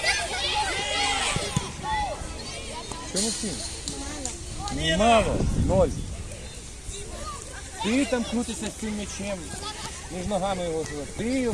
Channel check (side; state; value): both; identical; correlation 1.00